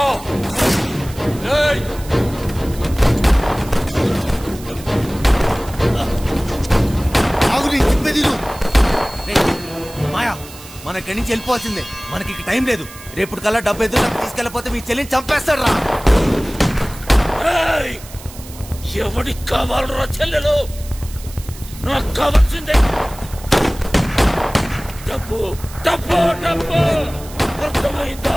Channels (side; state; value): right; noise; hiss, 17 dB below the sound